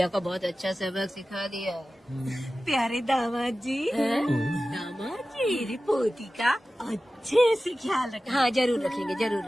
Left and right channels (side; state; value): both; normal; correlation 0.95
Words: को बहुत अच्छा सबक सिखा दिया। प्यारे दामाद जी, दामाद जी, मेरी पोती का अच्छे से ख्याल रखना। हाँ जरूर रखेंगे, जरूर